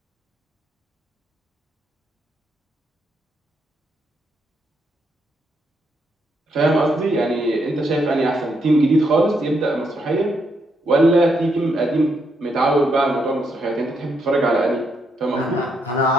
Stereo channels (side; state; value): both; normal; correlation 0.77